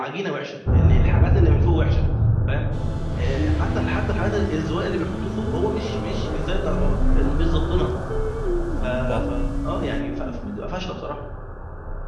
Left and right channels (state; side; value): identical; both; correlation 1.00